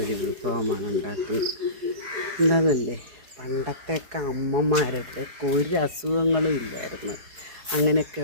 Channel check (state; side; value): late; left; 4.7 ms